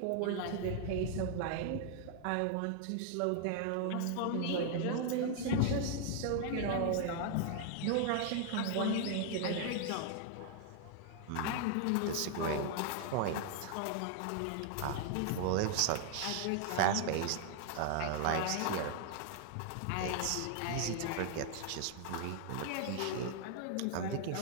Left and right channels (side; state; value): both; different; correlation 0.00